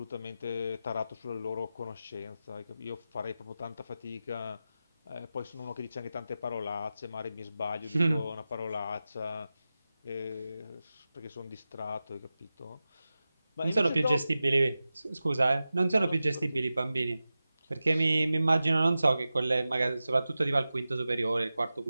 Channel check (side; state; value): both; inverted; correlation -0.94